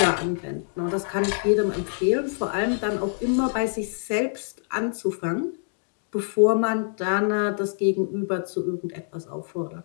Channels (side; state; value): right; silent; digital silence